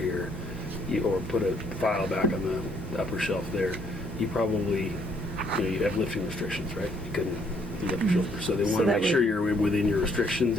or put a file back on the upper shelf there, you probably you have lifting restrictions, right? You couldn't lift your shoulder, so they want to that make sure would- you're within your restrictions.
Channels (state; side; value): normal; both; correlation 0.67